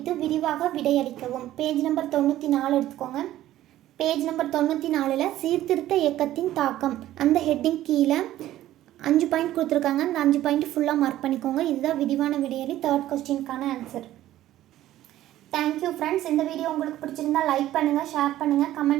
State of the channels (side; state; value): left; quieter; 13.9 dB